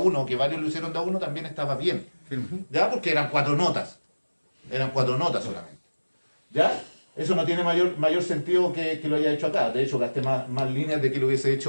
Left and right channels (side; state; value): both; inverted; correlation -1.00